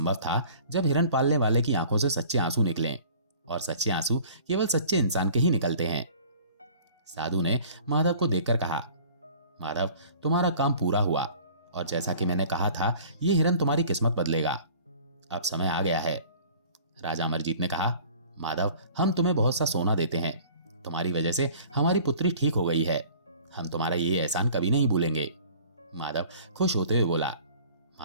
था जब हिरन पालने वाले की आंखों से सच्चे आंसू निकलें, और सच्चे आंसू केवल सच्चे इंसान के ही निकलते हैं। साधु ने माधव को देखकर कहा, माधव, तुम्हारा काम पूरा हुआ और जैसा कि मैंने कहा था, ये हिरन तुम्हारी किस्मत बदलेगा। अब समय आ गया है। राजा अमरजीत ने कहा, माधव, हम तुम्हें बहुत सा सोना देते हैं। तुम्हारी वजह से हमारी पुत्री ठीक हो गई है। हम तुम्हारा ये एहसान कभी नहीं भूलेंगे। माधव खुश होते हुए बोला,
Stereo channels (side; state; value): both; inverted; correlation -0.48